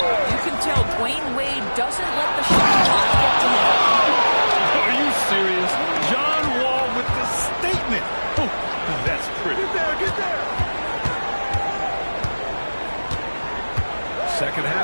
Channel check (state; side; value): inverted; both; correlation -1.00